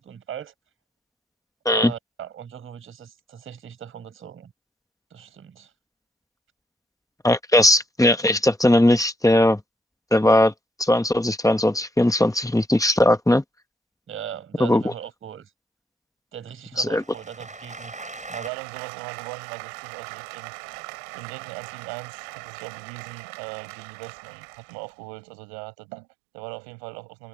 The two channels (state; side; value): drops out; left; at 18.5 s